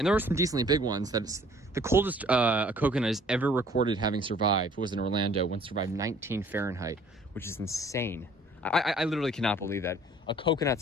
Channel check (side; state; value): both; normal; correlation 0.55